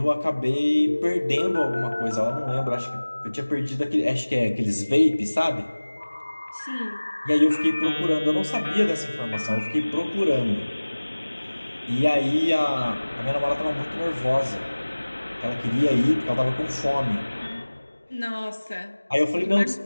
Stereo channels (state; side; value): inverted; both; correlation -1.00